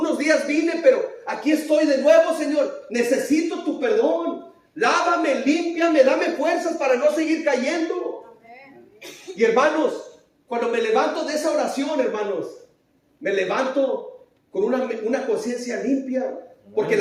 días vine, pero aquí estoy de nuevo, Señor. Necesito tu perdón. Lávame, límpiame, dame fuerzas para no seguir cayendo. Y hermanos, cuando me levanto de esa oración, hermanos, me levanto con una conciencia limpia. Porque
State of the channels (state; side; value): identical; both; correlation 1.00